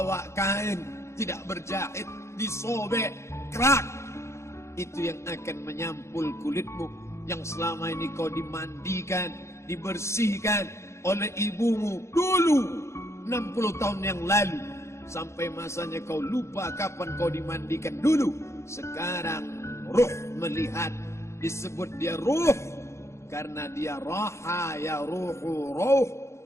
kain tidak berjahit, disobek, kerak. Itu yang akan menyampul kulitmu, yang selama ini kau dimandikan, dibersihkan oleh ibumu dulu 60 tahun yang lalu. Sampai masanya kau lupa kapan kau dimandikan dulu. Sekarang ruh melihat, disebut dia ruh karena dia raha ya ruhu ruh,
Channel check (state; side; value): late; right; 0.13 ms